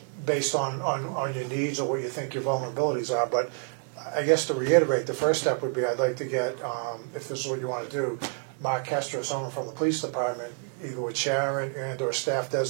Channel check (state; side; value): quieter; left; 39.7 dB